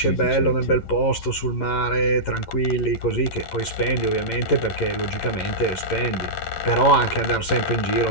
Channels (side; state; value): right; late; 11 ms